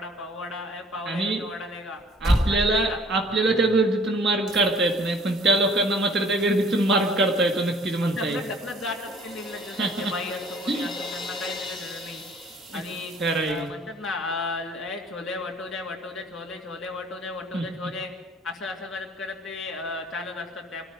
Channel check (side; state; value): both; normal; correlation 0.54